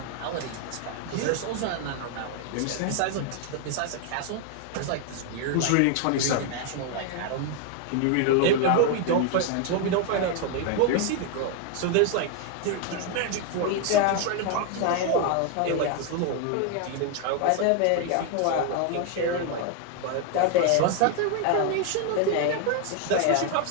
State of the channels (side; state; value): both; different; correlation 0.00